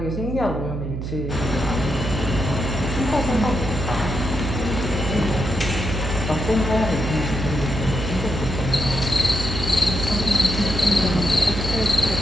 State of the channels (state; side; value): noise; right; hum, 5 dB below the sound